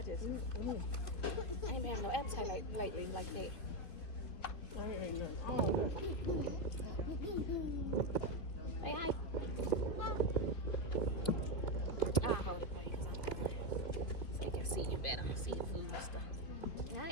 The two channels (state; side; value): late; right; 3.1 ms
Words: just I ain't been having no appetite lately like that. I ain't no. Say hi. I'll hold it for you so you can see you better. See your food and stuff. Yeah, I